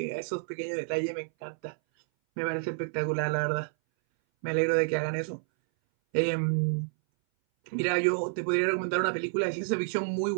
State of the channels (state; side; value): silent; left; 58 dB below the other